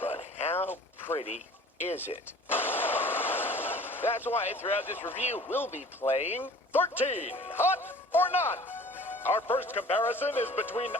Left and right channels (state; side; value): normal; both; correlation 0.47